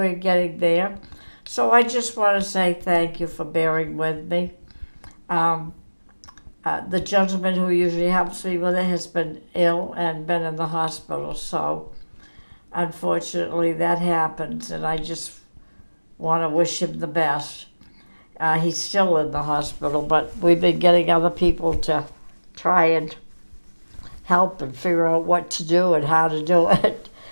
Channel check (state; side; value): inverted; both; correlation -1.00